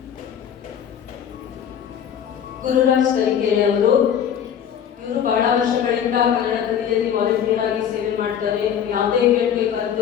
ಗುರುರಾಜ್ ತರೀಕೆರೆ ಅವರು ಇವರು ಬಹಳ ವರ್ಷಗಳಿಂದ ಕನ್ನಡ ಕಲಿಯಲ್ಲಿ ವಾಲಂಟಿಯರ್ ಆಗಿ ಸೇವೆ ಮಾಡ್ತಾರೆ. ಯಾವುದೇ ಇವೆಂಟ್ಗೆ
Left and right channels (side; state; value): right; quieter; 8.8 dB